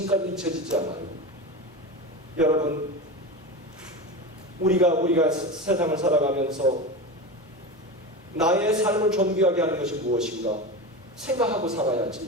잊혀지지 않아요. 여러분, 우리가 세상을 살아가면서 나의 삶을 존귀하게 하는 것이 무엇인가? 생각하고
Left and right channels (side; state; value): both; normal; correlation 0.24